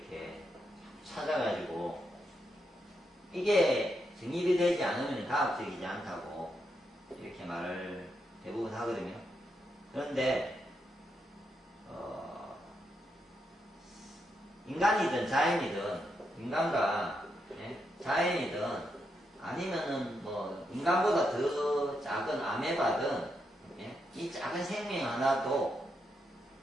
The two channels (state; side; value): normal; both; correlation 0.82